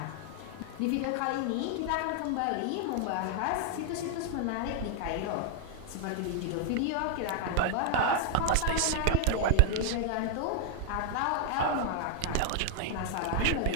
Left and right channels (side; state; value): both; different; correlation 0.00